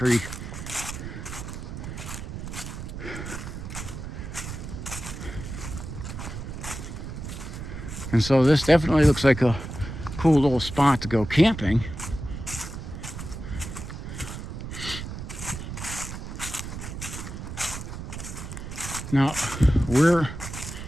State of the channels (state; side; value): noise; right; rumble, 8 dB below the sound